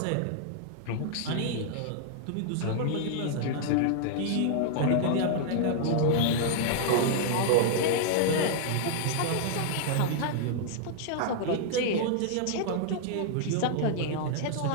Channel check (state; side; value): different; both; correlation -0.01